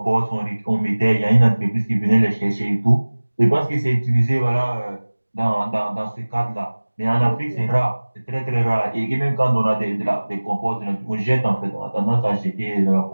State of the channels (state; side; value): inverted; both; correlation -1.00